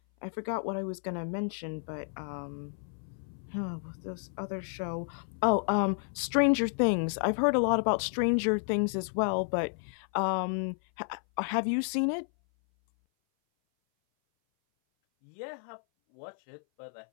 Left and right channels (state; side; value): silent; right; 57 dB below the other